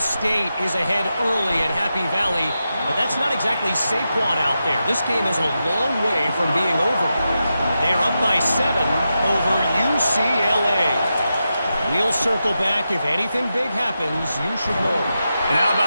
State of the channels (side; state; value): both; inverted; correlation -0.89